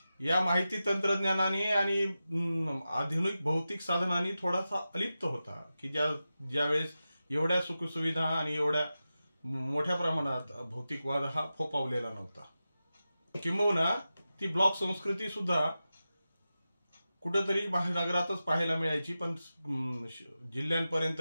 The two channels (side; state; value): both; inverted; correlation -0.93